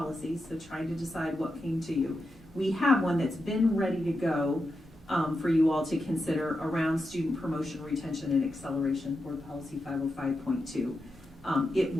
so trying to decide what came to you. We have one that's been ready to go for you all to consider around student promotion, retention, and acceleration, Board Policy 505.2. It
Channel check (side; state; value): both; normal; correlation 0.88